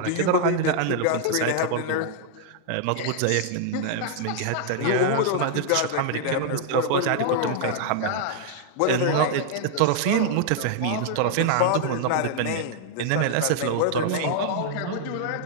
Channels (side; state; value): both; different; correlation -0.01